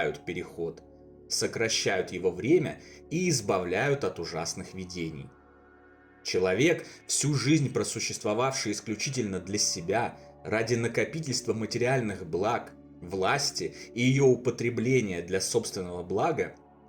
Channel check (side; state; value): both; identical; correlation 1.00